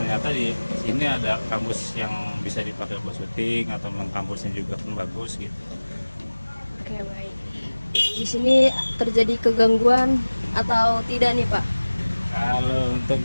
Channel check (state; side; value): inverted; both; correlation -1.00